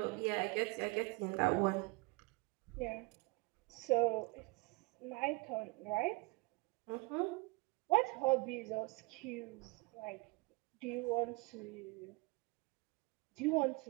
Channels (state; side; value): quieter; left; 25.9 dB